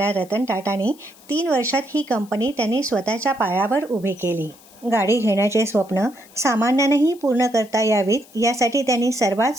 रतन टाटांनी 3 वर्षात ही कंपनी त्यांनी स्वतःच्या पायावर उभी केली. गाडी घेण्याचे स्वप्न सामान्यांनाही पूर्ण करता यावीत यासाठी त्यांनी सर्वात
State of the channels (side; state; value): left; noise; hiss, 25 dB below the sound